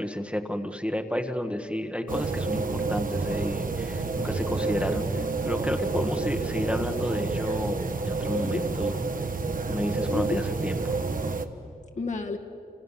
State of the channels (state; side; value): normal; both; correlation 0.75